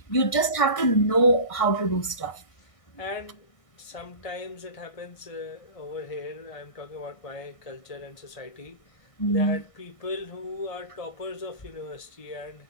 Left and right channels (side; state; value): right; late; 1.6 ms